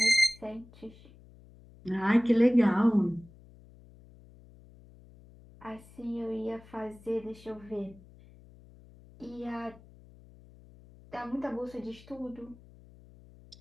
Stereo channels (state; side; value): noise; left; hum, 23 dB below the sound